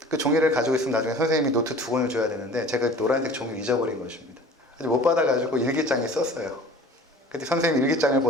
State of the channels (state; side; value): normal; both; correlation 0.44